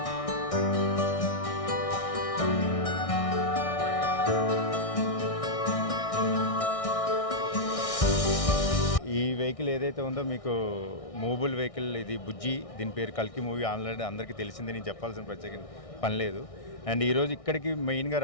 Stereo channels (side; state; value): right; late; 1.6 ms